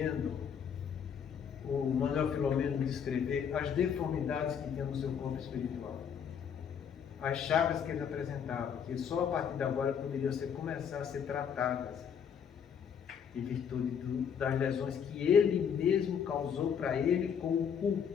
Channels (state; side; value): quieter; right; 7.6 dB